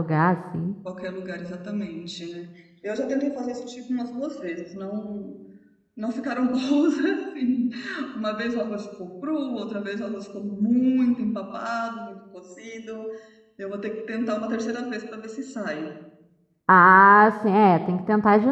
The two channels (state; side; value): identical; both; correlation 1.00